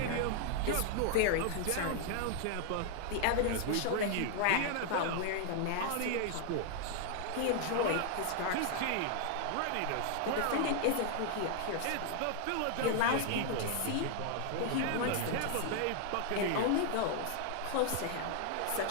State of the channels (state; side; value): different; both; correlation 0.00